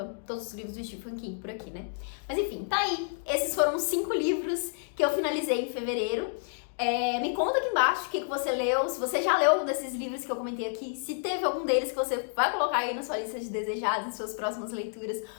todos os livros do Stephen King por aqui, né? Mas enfim, tá aí. Esses foram 5 livros que eu finalizei em fevereiro. Me conta aqui embaixo o que você leu, se você já leu algum desses livros que eu comentei aqui, se teve algum deles que você vai colocar aí na sua lista de desejados, em suas próximas leituras,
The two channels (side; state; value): right; silent; digital silence